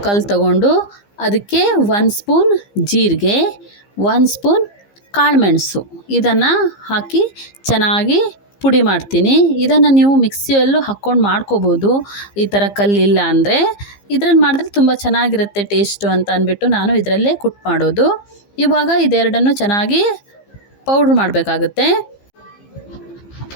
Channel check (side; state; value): right; late; 15 ms